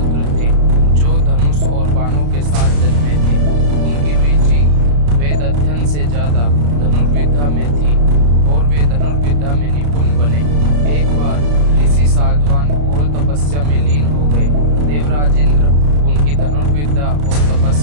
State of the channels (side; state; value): left; late; 34 ms